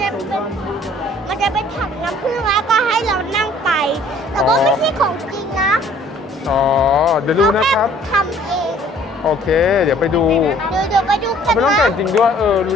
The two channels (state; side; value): normal; both; correlation 0.56